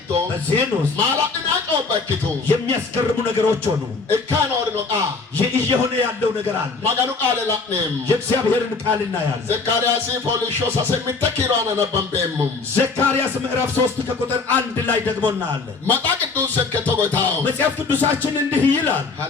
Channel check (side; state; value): right; quieter; 4.2 dB